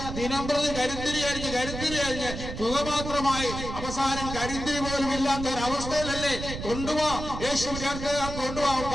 ദിനംപ്രതി കരുത്തിരി അരിഞ്ഞ് പുക മാത്രമായി അവസാനം കരിന്തിരി പോലും ഇല്ലാത്ത ഒരു അവസ്ഥയിലല്ലേ? കൊണ്ടുപോവാ യേശു ചേർത്ത് കൊണ്ടുപോവാ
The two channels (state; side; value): noise; right; rumble, 7 dB below the sound